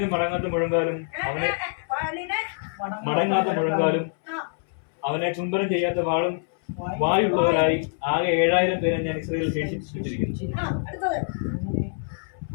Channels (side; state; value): right; silent; 62 dB below the other